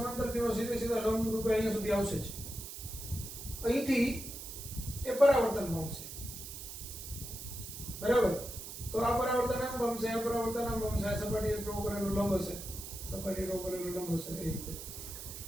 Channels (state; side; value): noise; right; hiss, 10 dB below the sound